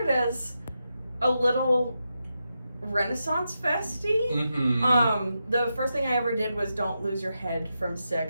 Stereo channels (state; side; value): inverted; both; correlation -0.87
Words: as a little Renaissance festy. Mm-hmm. The first thing I ever did was Don't Lose Your Head from